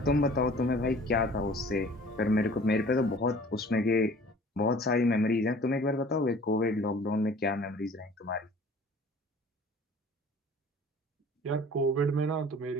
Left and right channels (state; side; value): normal; both; correlation 0.48